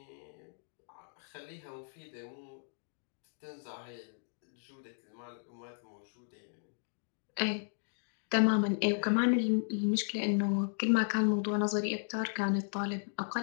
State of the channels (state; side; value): silent; right; digital silence